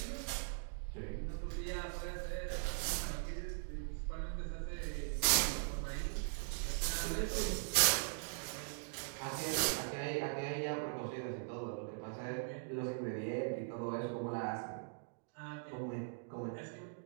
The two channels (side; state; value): left; silent; digital silence